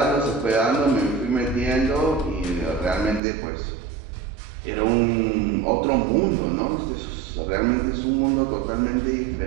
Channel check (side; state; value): left; drops out; at 3.2 s